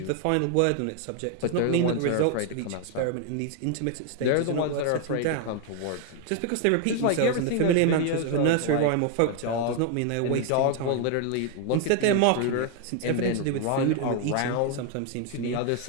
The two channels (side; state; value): both; different; correlation 0.01